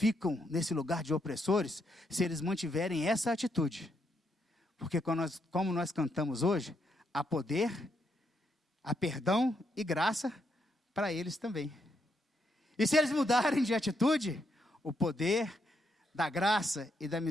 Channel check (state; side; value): normal; both; correlation 0.78